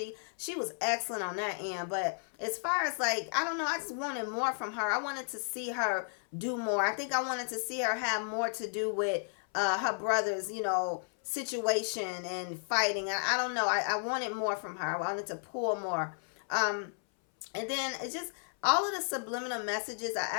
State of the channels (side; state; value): right; silent; 56 dB below the other